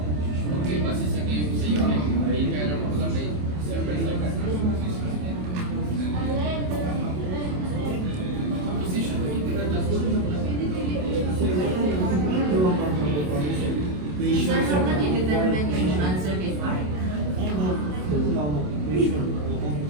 Okay, base sa game sa unit, may kaya naman ko lang may server sa position of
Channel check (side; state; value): left; late; 27 ms